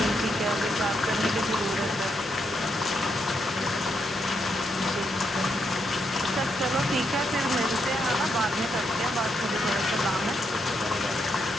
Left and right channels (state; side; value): normal; both; correlation 0.79